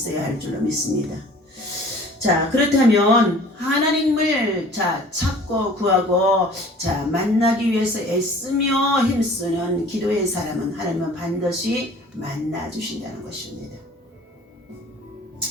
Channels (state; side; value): normal; both; correlation 0.48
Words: 할 줄로 믿습니다. 그렇다면 하나님을 찾고 구하고 만나기 위해서 애쓰며 힘쓰는 기도의 사람은 하나님은 반드시 만나 주신다는 것입니다.